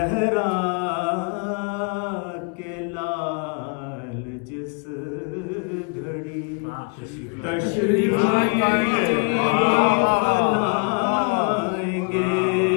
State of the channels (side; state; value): right; quieter; 36.5 dB